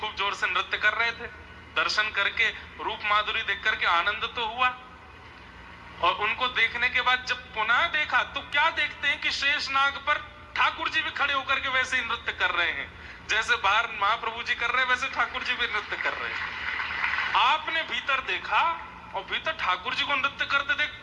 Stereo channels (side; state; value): both; identical; correlation 1.00